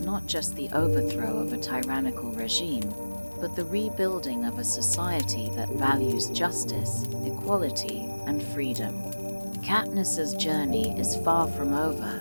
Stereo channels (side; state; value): both; inverted; correlation -1.00